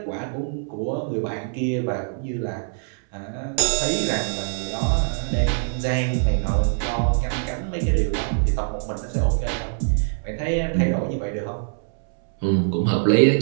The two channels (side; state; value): left; silent; 63 dB below the other